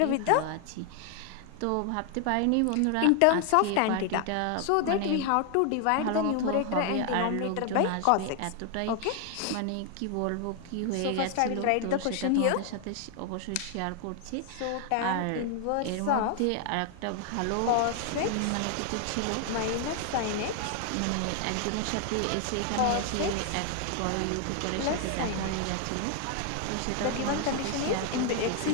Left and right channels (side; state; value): both; different; correlation 0.00